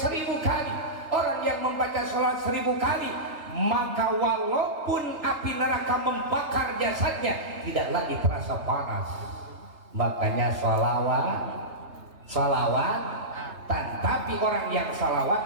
kali. Orang yang membaca salawat 1000 kali maka walaupun api neraka membakar jasadnya tidak lagi terasa panas. Makanya salawatan, tapi orang yang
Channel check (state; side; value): late; left; 3.3 ms